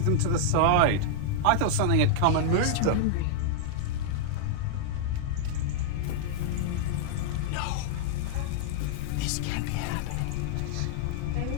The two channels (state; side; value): different; both; correlation -0.01